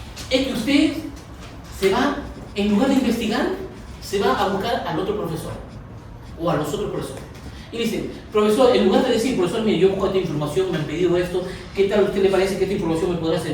Es que usted se va, en lugar de investigar, se va a buscar al otro profesor o a los otros profesores. Y dice, profesor, en lugar de decir, profesor, mire, yo busco esta información, me han pedido esto, ¿qué tal a usted le parece que esta información me podrá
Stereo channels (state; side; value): identical; both; correlation 1.00